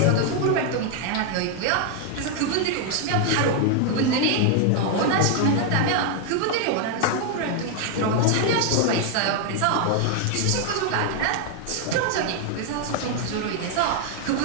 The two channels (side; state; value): both; different; correlation 0.00